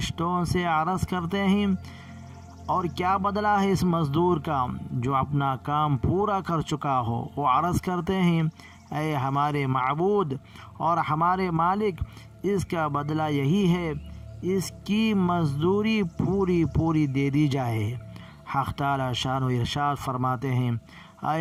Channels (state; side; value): identical; both; correlation 1.00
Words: سے عرض کرتے ہیں، اور کیا بدلہ ہے اس مزدور کا جو اپنا کام پورا کر چکا ہو؟ وہ عرض کرتے ہیں، اے ہمارے معبود اور ہمارے مالک، اس کا بدلہ یہی ہے، اس کی مزدوری پوری دے دی جائے۔ حق تعالی شان و ارشاد فرماتے ہیں،